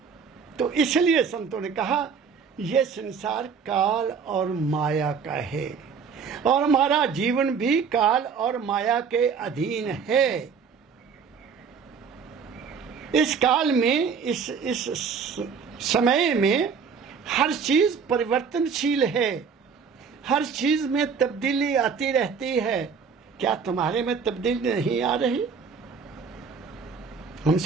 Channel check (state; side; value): quieter; left; 6.0 dB